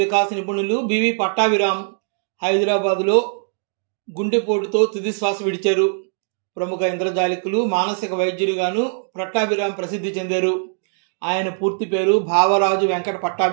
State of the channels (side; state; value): left; silent; digital silence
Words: నిపుణులు బివి పట్టాభిరామ్ హైదరాబాదులో గుండెపోటుతో తుది శ్వాస విడిచారు. ప్రముఖ ఇంద్రజాలికులు, మానసిక వైద్యులుగాను పట్టాభిరామ్ ప్రసిద్ధి చెందారు. ఆయన పూర్తి పేరు భావరాజు వెంకట